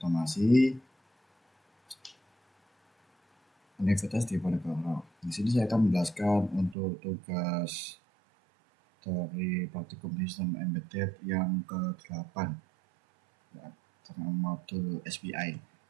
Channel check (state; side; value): drops out; left; at 6.8 s